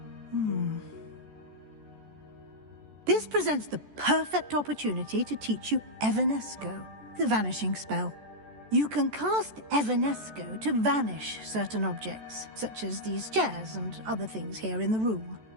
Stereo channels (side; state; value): left; late; 14 ms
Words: This presents the perfect opportunity to teach you Evanesco, the vanishing spell. You can cast Evanesco to vanish certain objects, such as these chairs and other things here in the room.